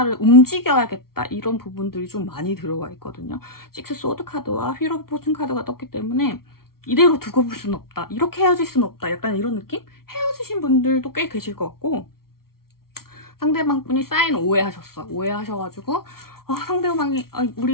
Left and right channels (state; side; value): late; right; 0.94 ms